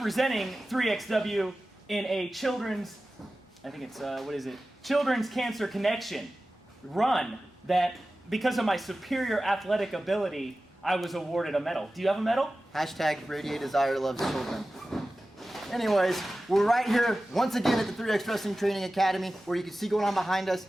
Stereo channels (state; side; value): normal; both; correlation 0.95